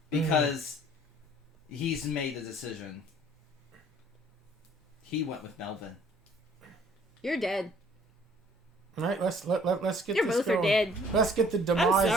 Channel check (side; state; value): both; normal; correlation 0.57